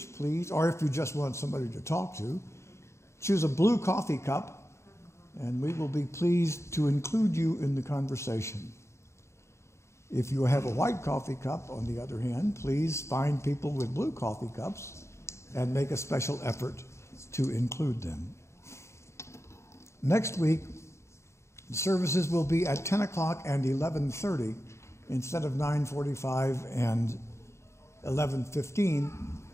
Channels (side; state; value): right; late; 0.13 ms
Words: please, or if you just want somebody to talk to, choose a blue coffee cup, and we will be pleased to include you in the conversation. If you have a white coffee cup, on the other hand, please find people with blue coffee cups and make a special effort to include them. Next week, the services will be at 10 o'clock and 11:30 instead of 9:45 and 11:15,